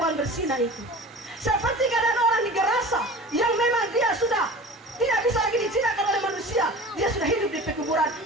berzina itu, seperti keadaan orang di Gerasa yang memang dia sudah tidak bisa lagi dijinakan oleh manusia, dia sudah hidup di pekuburan.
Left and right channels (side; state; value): both; normal; correlation 0.38